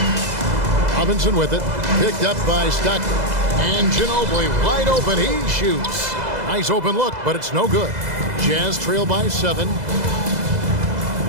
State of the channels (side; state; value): left; late; 2.0 ms